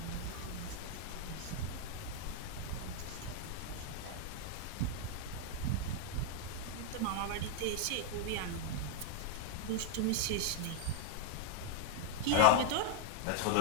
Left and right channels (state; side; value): different; both; correlation 0.00